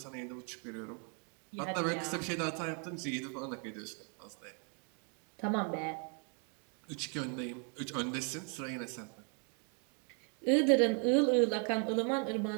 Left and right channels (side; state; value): left; quieter; 39.0 dB